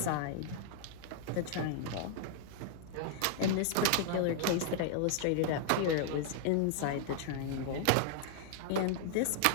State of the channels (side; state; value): both; different; correlation 0.00